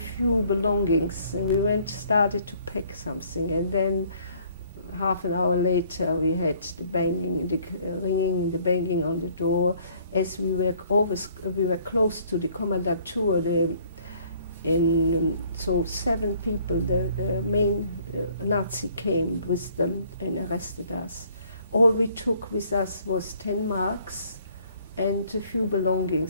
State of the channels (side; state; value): both; inverted; correlation -0.60